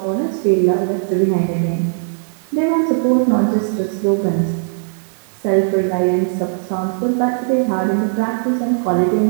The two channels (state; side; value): silent; left; 60 dB below the other